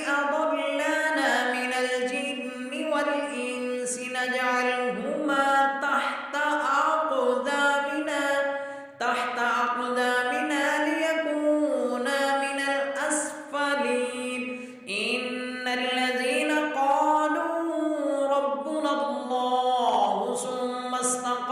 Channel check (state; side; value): identical; both; correlation 1.00